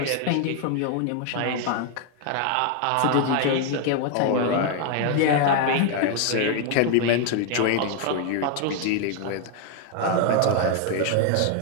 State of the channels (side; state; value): both; different; correlation 0.00